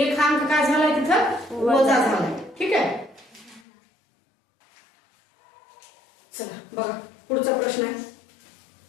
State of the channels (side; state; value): right; drops out; at 3.6 s